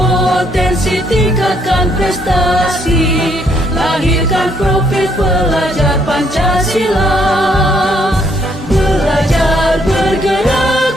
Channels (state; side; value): normal; both; correlation 0.70